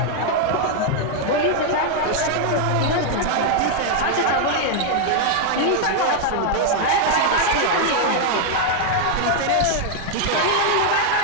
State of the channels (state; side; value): different; both; correlation 0.00